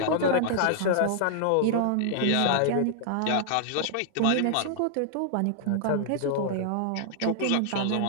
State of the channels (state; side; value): different; both; correlation -0.01